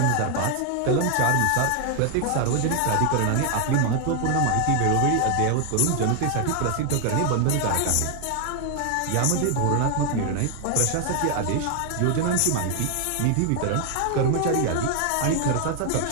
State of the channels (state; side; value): different; both; correlation 0.00